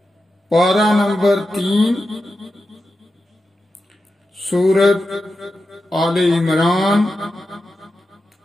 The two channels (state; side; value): normal; both; correlation 0.90